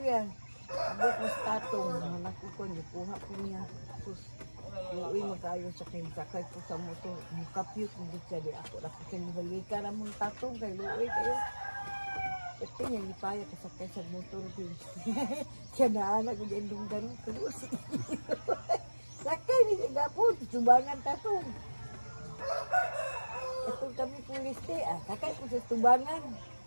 Abot mas tatong anak ko ko ni kuha ko niya. Sus. Uy magayo sa kin sakay ko sa motor. Mukapyut mo siya di ako ra ko kin balika ra mo tatong kay luoy kayo. Ito niya ipaya ka sa motor din. Kaya na anak ko dyan dunggan ko. tubangan tato. Ito kami pulis te, kakay ko sa tubangan.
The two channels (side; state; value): both; inverted; correlation -1.00